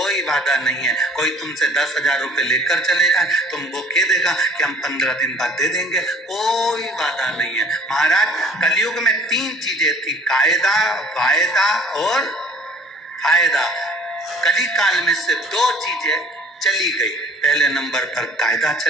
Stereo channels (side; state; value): both; normal; correlation 0.52